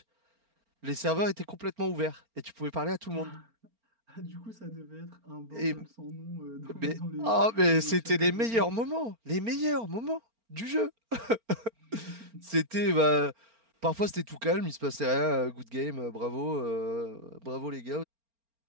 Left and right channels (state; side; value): late; left; 4.4 ms